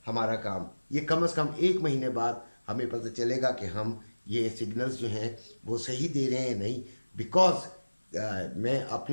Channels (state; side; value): inverted; both; correlation -1.00